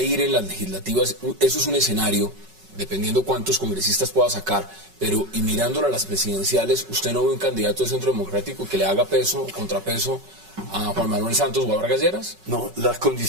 ir en las legislativas. Eso es un escenario, dependiendo cuántos congresistas pueda sacar, pero y mirándolo a las presidenciales, ¿usted no ve un candidato del Centro Democrático que le haga peso, contrapeso a Juan Manuel Santos o a Vargas Lleras? No, las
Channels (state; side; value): late; left; 5.3 ms